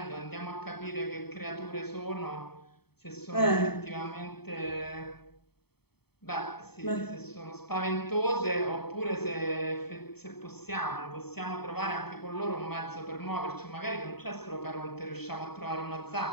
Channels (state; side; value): late; right; 0.97 ms